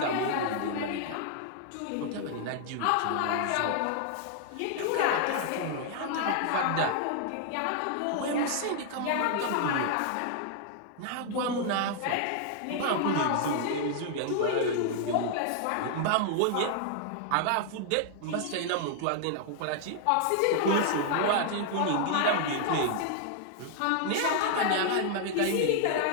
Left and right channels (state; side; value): different; both; correlation 0.00